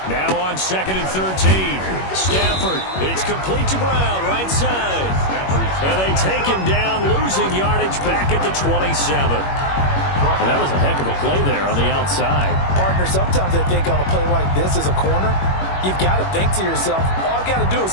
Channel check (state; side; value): late; right; 21 ms